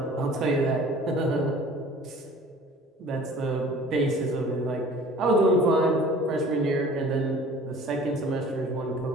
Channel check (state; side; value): normal; both; correlation 0.47